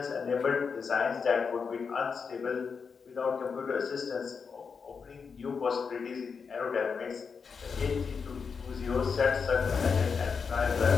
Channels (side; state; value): right; quieter; 5.7 dB